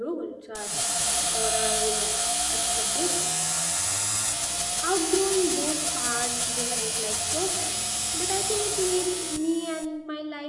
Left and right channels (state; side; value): identical; both; correlation 1.00